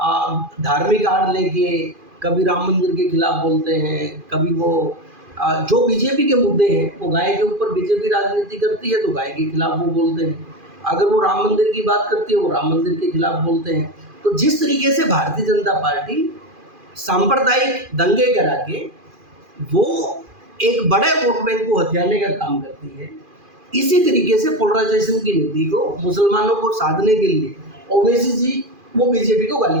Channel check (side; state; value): left; late; 2.4 ms